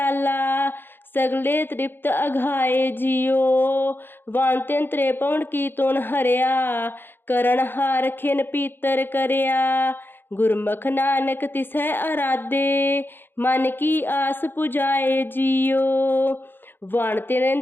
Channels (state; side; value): late; right; 0.10 ms